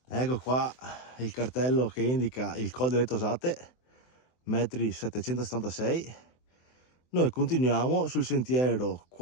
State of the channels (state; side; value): late; right; 24 ms